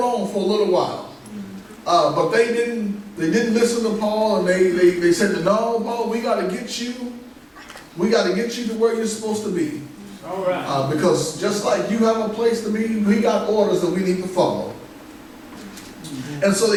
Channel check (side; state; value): both; identical; correlation 1.00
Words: for a little while. But they didn't listen to Paul, and they said, no, Paul, we got to get you to where you're supposed to be. All right. Because just like you have a place to be, we got orders that we need to follow. And so